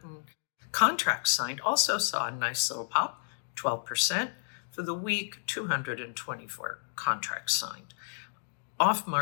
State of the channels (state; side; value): silent; right; digital silence